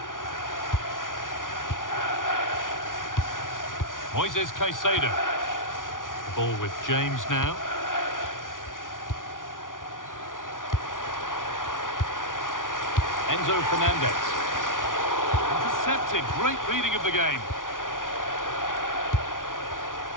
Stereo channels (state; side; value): late; right; 0.88 ms